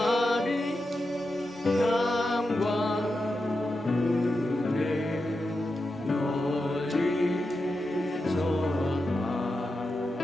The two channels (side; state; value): both; normal; correlation 0.89